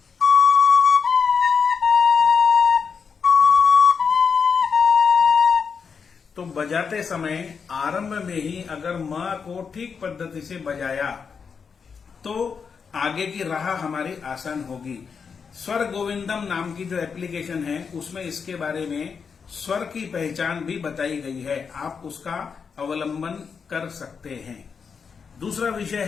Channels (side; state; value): right; quieter; 6.0 dB